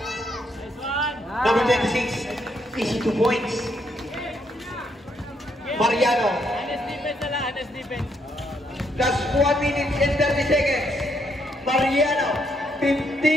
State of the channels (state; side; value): normal; both; correlation 0.75